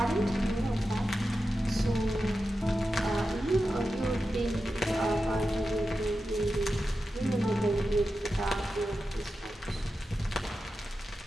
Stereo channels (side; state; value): both; normal; correlation 0.91